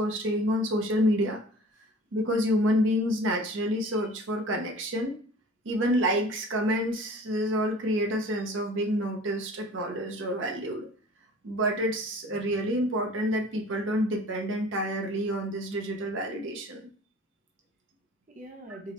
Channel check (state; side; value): normal; both; correlation 0.45